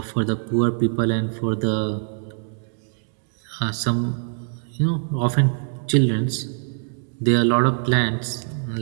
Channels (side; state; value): left; silent; 56 dB below the other